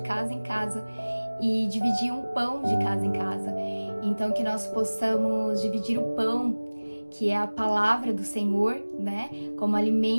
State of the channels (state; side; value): inverted; both; correlation -1.00